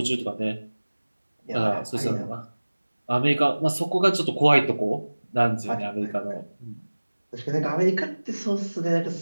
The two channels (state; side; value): inverted; both; correlation -1.00